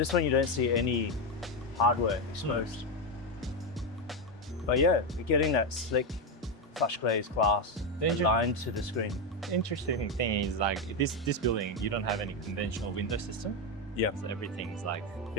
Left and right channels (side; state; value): both; normal; correlation 0.08